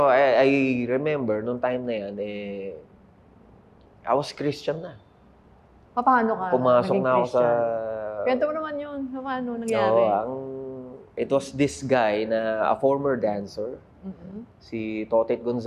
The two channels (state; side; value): identical; both; correlation 1.00